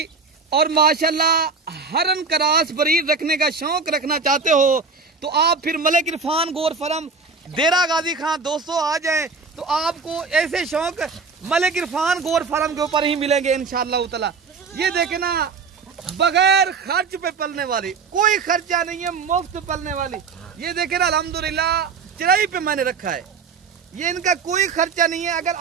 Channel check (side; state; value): left; quieter; 4.9 dB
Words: और माशाल्लाह हरन करास बरीड रखने का शौक रखना चाहते हो तो आप फिर मलिक इरफान गोर फरम देरा गाजी खां दोस्तों आ जाएं, तो आपको ऐसे शौक मलिक इरफान गोर फरम के ऊपर ही मिलेंगे इंशाअल्लाह ताला। ये देखे ना बगैर खर्च पे पलने वाली, कोई खर्चा नहीं है, मुफ्त पलने वाली। ये देखे ना अल्हम्दुलिल्लाह चराई पे मैंने रखा है, ये इनका कोई खर्चा नहीं है। अगर